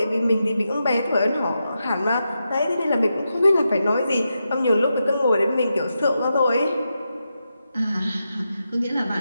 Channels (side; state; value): both; inverted; correlation -0.87